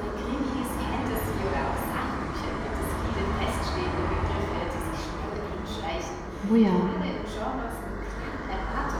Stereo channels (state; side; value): identical; both; correlation 1.00